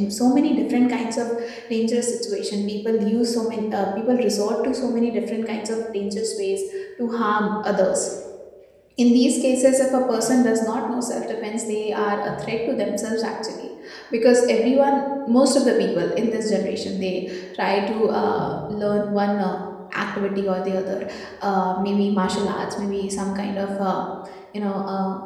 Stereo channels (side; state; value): both; identical; correlation 1.00